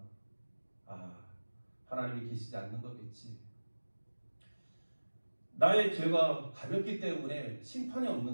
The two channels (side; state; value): both; inverted; correlation -1.00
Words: 하나님이 계시지 않는 거겠지. 나의 죄가 가볍기 때문에 심판이